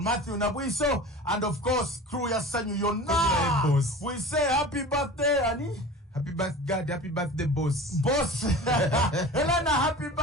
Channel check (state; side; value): normal; both; correlation 0.37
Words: Matthew Nabuiso and of course crew ya Sanyu Yona we say happy birthday Ani happy birthday happy birthday boss Elena happy